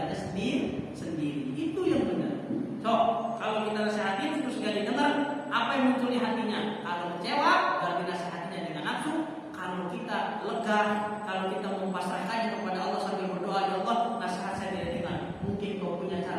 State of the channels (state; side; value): identical; both; correlation 1.00